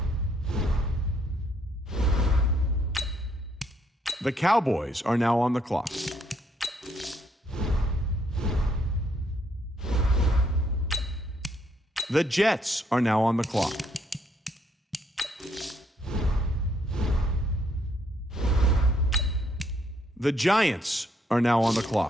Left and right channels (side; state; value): both; normal; correlation 0.70